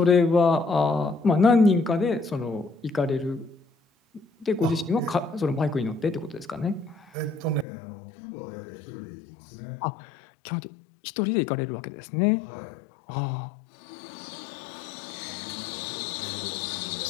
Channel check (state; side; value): drops out; right; at 7.7 s